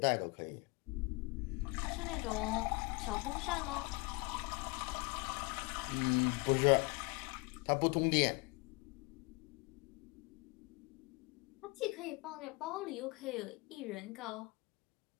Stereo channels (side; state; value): right; quieter; 27.4 dB